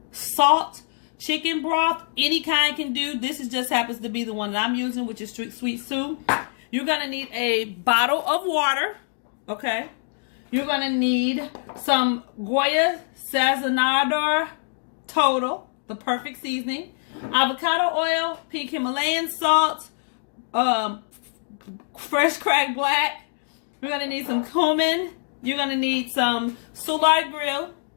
salt chicken broth. Any kind can do. This just happens to be the one that I'm using, which is sweet Sue. You're going to need a bottle of water, okay? You're going to need some Goya Sazonador Total, the perfect seasoning, avocado oil, pink Himalayan salt, fresh cracked black. You're going to need some cumin. You're going to need some Soulard Grill,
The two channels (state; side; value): silent; right; 62 dB below the other